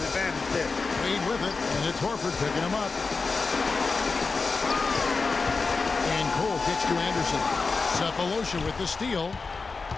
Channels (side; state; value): right; quieter; 4.3 dB